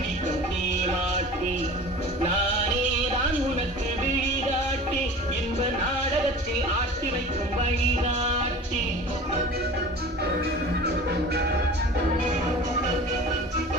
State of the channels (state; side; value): normal; both; correlation 0.39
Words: நீ மாட்டி, நானே தான் உனக்கு விழிகாட்டி, என்ப நாடகத்தில் ஆட்டி வைக்கும் வழிகாட்டி.